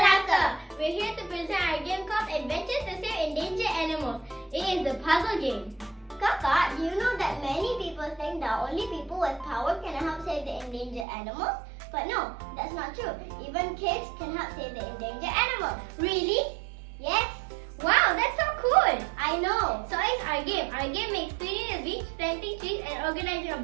We're here to present our game called Adventures to Save Endangered Animals. It is a puzzle game. Kaka, do you know that many people think that only people with power can help save the endangered animals? But no, that's not true. Even kids can help save the endangered animals. Really? Yes. Wow, that's so cool. I know. So it's our game. Our game makes cleaning the beach, planting trees, and organizing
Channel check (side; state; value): left; drops out; at 11.1 s